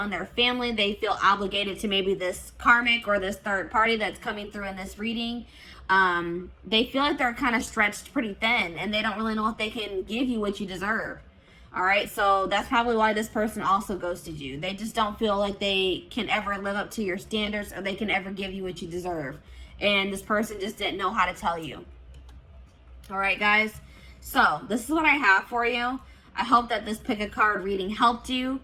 their family. They feel obligated to maybe this karmic or this third party that's coming through in this reading. They feel like they're kind of stretched pretty thin, and they don't really know if they can give you what you deserve. All right, so that's probably why this person also ghosted you. They just don't feel like they can ever live up to your standards, or they can ever give you what you deserve. And this person just didn't know how to tell you. All right, guys. So this is what I have for you. I hope that this pick a card reading helped you.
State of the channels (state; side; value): identical; both; correlation 1.00